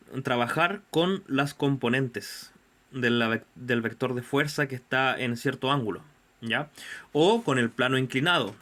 trabajar con las componentes del vector de fuerza que está en cierto ángulo, ¿ya? O con el plano inclinado,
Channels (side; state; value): both; identical; correlation 1.00